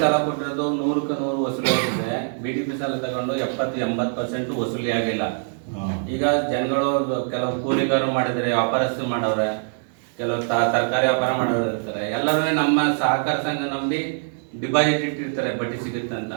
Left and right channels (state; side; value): silent; left; digital silence